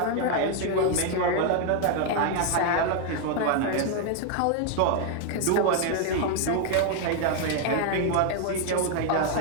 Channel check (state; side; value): different; both; correlation 0.01